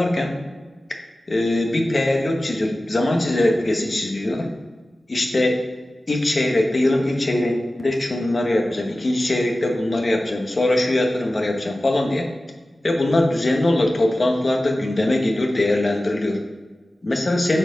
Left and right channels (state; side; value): normal; both; correlation 0.96